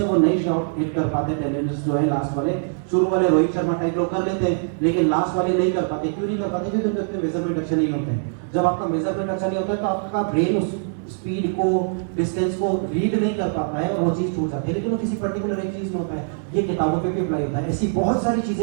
वो नए शॉट हिट कर पाते, टेनिस जो है लास्ट वाले, शुरू वाले रोहित शर्मा टाइप लोग कर लेते हैं, लेकिन लास्ट वाले नहीं कर पाते। क्यों नहीं कर पाते? क्योंकि उनके मेजरमेंट अच्छे नहीं होते हैं। जब आपका मेजरमेंट अच्छा नहीं होता है तो आपका ब्रेन उस स्पीड को, डिस्टेंस को रीड नहीं कर पाता है और वो चीज छूट जाती है। लेकिन वो किसी पर्टिकुलर एक चीज में होता है, ये किताबों पे भी अप्लाई होता है। ऐसी बहुत सारी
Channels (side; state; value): left; silent; digital silence